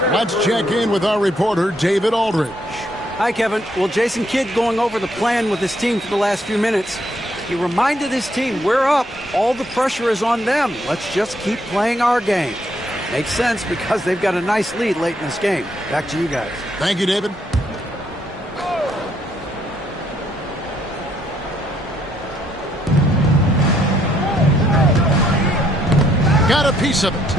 Let's check in with our reporter, David Aldridge. Hi, Kevin. Well, Jason Kidd going over the plan with his team for the last few minutes. He reminded his team, we're up. All the pressure is on them. Let's just keep playing our game. Makes sense because they've got a nice lead late in this game. Back to you guys. Thank you, David. Got a piece of it.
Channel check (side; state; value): both; normal; correlation 0.71